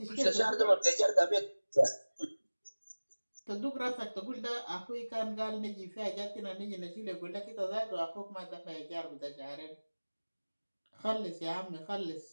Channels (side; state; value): both; inverted; correlation -1.00